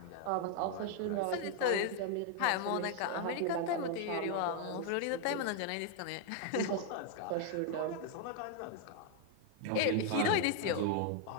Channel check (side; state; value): both; different; correlation 0.00